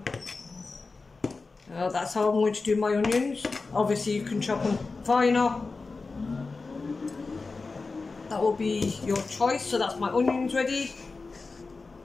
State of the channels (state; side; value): quieter; right; 4.0 dB